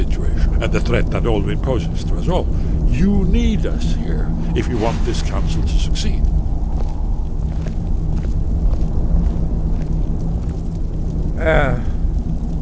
and the threat that Alduin poses to us all. You need us here if you want this council to succeed.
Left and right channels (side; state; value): both; identical; correlation 1.00